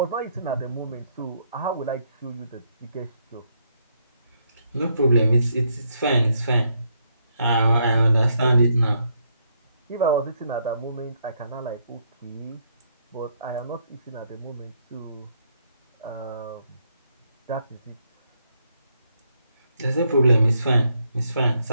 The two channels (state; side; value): inverted; both; correlation -0.74